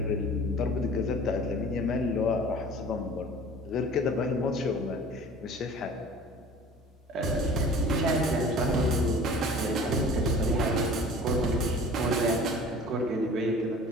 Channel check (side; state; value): both; normal; correlation 0.44